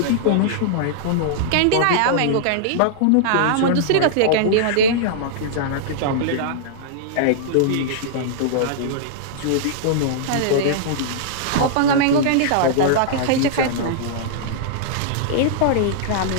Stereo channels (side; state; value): both; different; correlation -0.02